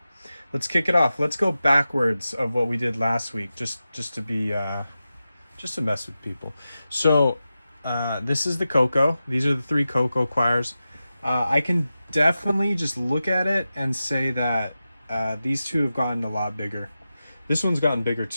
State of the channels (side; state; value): both; inverted; correlation -0.93